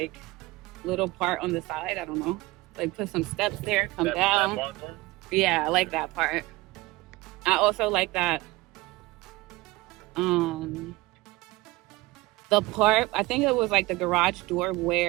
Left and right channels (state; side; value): quieter; left; 20.5 dB